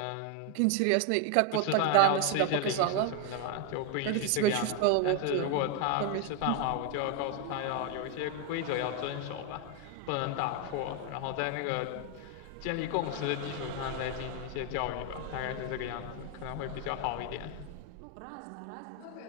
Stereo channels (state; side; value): different; both; correlation 0.01